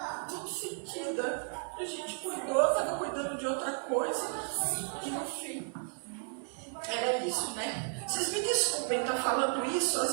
sentida. A gente cuidou, estava cuidando de outra coisa. E no fim, era isso, né? Vocês me desculpem estar falando isso, às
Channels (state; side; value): silent; left; 55 dB below the other